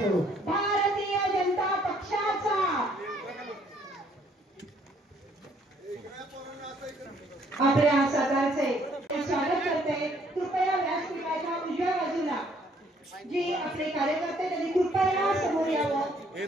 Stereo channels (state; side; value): normal; both; correlation 0.65